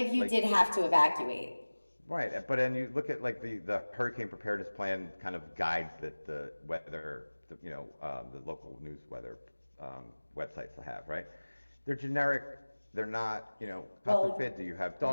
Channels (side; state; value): both; inverted; correlation -1.00